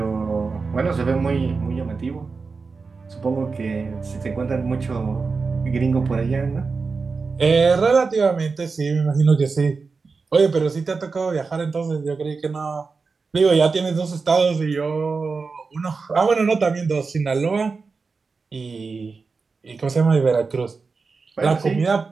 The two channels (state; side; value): quieter; left; 4.5 dB